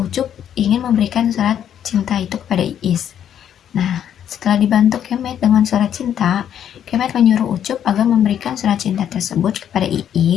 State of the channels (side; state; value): right; quieter; 9.7 dB